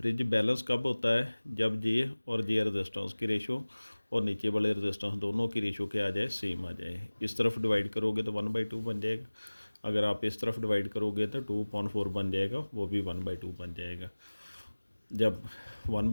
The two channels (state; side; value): inverted; both; correlation -1.00